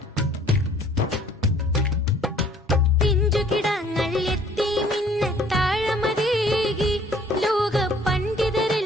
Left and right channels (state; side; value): normal; both; correlation 0.57